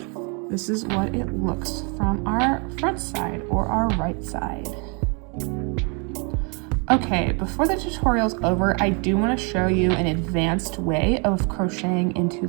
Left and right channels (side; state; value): left; quieter; 34.4 dB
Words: This is what it looks from our front side or our right side. Okay, before the tutorial's over, I do want to show you an advanced way of crocheting into